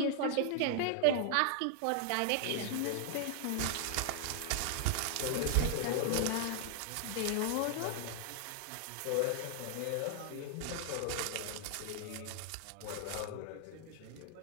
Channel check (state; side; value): different; both; correlation 0.00